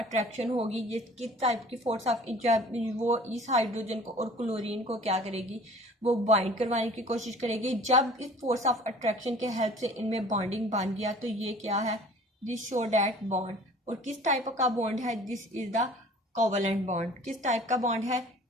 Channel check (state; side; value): normal; both; correlation 0.48